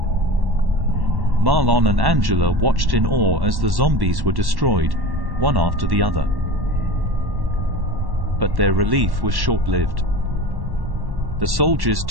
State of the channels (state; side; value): late; left; 1.1 ms